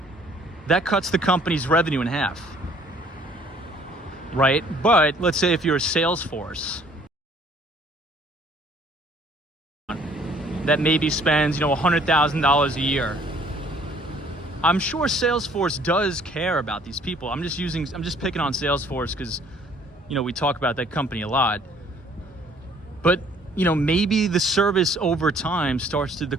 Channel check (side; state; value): both; normal; correlation 0.58